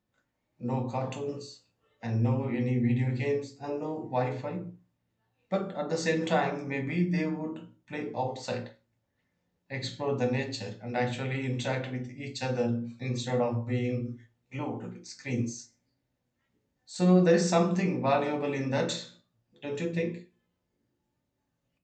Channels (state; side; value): identical; both; correlation 1.00